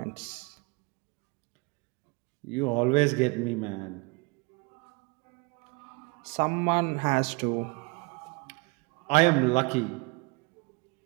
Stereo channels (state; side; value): quieter; left; 28.0 dB